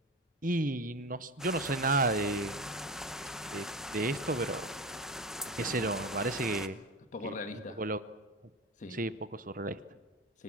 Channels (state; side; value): normal; both; correlation 0.26